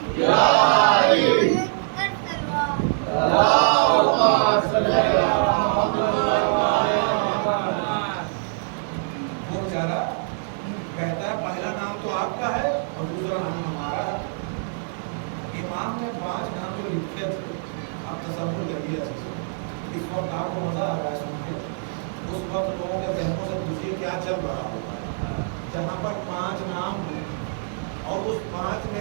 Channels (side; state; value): left; silent; digital silence